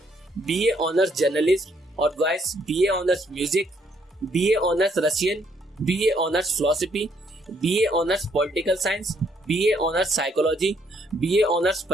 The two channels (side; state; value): both; normal; correlation 0.69